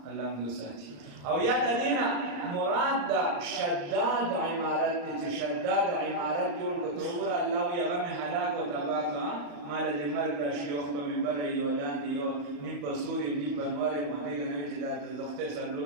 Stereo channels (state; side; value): late; left; 35 ms